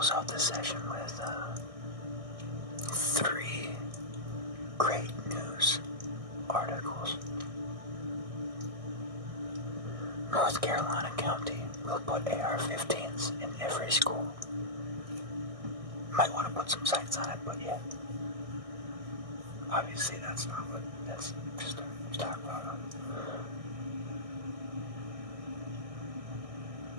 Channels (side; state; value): left; late; 1.6 ms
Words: out this session with 3 great news articles. North Carolina County will put AR-15s in every school. Might want to put some sights on it, but yeah. Obviously that's not what, that's just a stock photo.